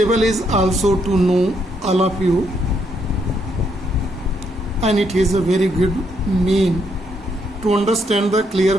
is also to know all of you, and it is a very good mean to understand the clear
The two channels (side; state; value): both; normal; correlation 0.75